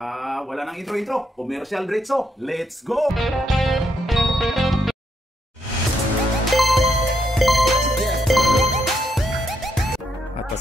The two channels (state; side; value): normal; both; correlation 0.78